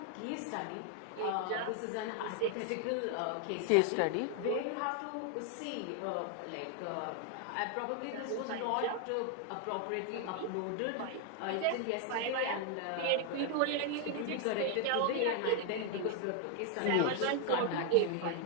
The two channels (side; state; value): both; different; correlation 0.01